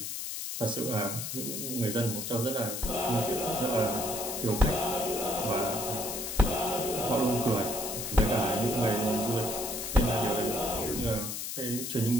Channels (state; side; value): noise; left; hiss, 5 dB below the sound